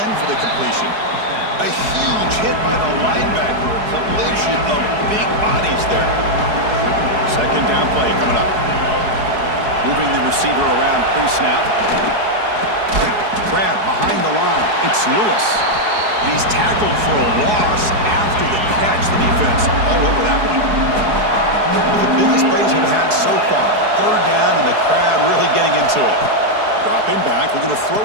end for the completion. A huge hit by the linebacker. A collision of big bodies there. 2nd down play coming up. Moving the receiver around pre-snap. Grab behind the line. It's Lewis. And he's tackled for a loss after the catch. The defense all over that one. One of the biggest plays we've had so far. 3rd down and the crowd really getting into it. Dropping back, looking to throw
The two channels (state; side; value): late; left; 4.7 ms